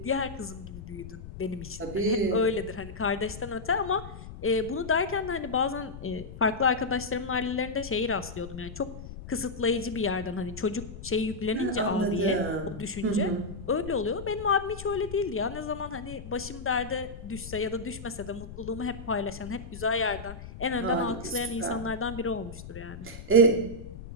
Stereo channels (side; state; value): left; noise; rumble, 12 dB below the sound